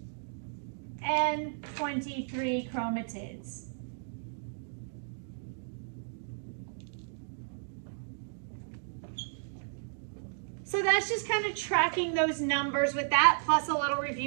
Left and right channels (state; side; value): silent; left; digital silence